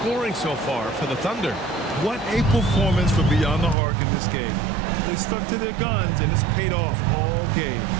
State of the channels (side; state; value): left; drops out; at 3.8 s